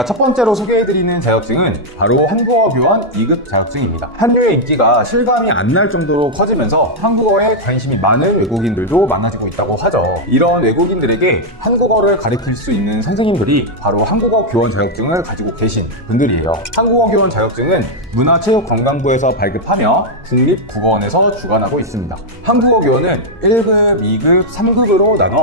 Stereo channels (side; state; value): both; normal; correlation -0.02